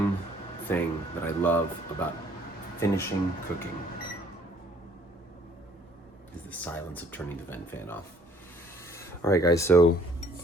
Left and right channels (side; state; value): both; normal; correlation 0.60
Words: thing that I love about finishing cooking, is the silence of turning the vent fan off. All right, guys, so